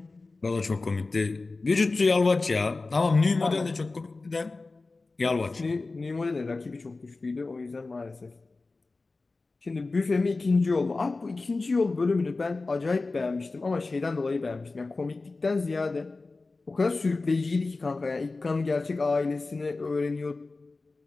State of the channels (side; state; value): right; quieter; 3.6 dB